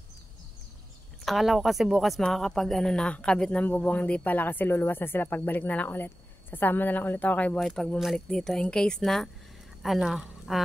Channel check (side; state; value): both; normal; correlation 0.94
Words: Akala ko kasi bukas makakapag ano na, kabit ng bubong, hindi pala kasi luluwas na sila, pagbalik na lang ulit. Sasama na lang ulit ako kay Boy pag bumalik dito. In case na, ano,